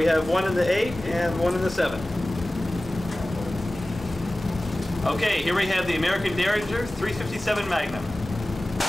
have one in the 8 and one in the 7. Okay, here we have the American Derringer 357 Magnum.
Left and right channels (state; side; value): normal; both; correlation 0.97